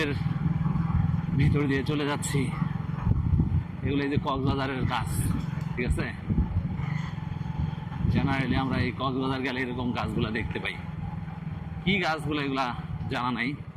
ভিতর দিয়ে চলে যাচ্ছি। এগুলো এই যে কক্সবাজারের গাছ, ঠিক আছে। জেনারেলি আমরা এই কক্সবাজার গেলে এরকম গাছগুলা দেখতে পাই। কি গাছগুলো এগুলা জানা নাই।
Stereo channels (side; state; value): both; identical; correlation 1.00